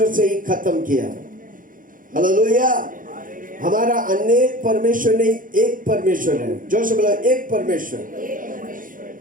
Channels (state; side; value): late; left; 0.39 ms